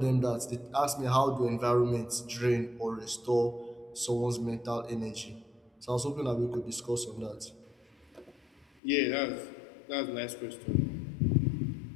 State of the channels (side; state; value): right; drops out; at 8.8 s